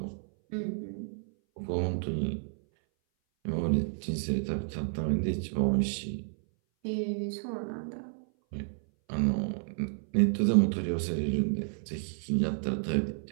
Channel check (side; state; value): left; silent; 57 dB below the other